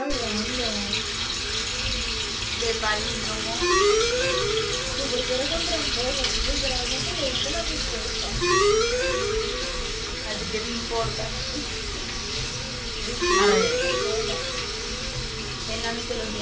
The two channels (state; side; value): identical; both; correlation 1.00